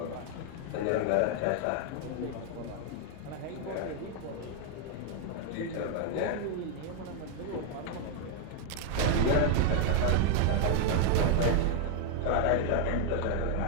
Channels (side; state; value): both; different; correlation 0.00